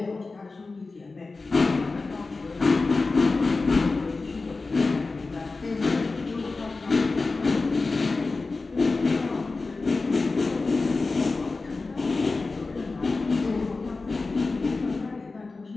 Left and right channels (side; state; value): right; quieter; 3.7 dB